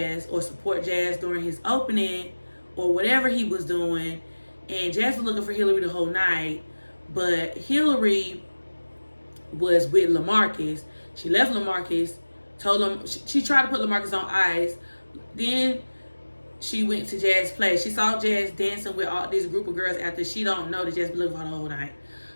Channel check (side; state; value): both; inverted; correlation -1.00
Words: or support Jazz during his opening or whatever he was doing, and Jazz was looking for Hillary the whole night, but Hillary was with LaMarcus. She left LaMarcus, told him she tried to put LaMarcus on ice. Then she went to Jazz place. She saw Jazz dancing with all this group of girls after she don't know that Jazz been looking for her the whole night.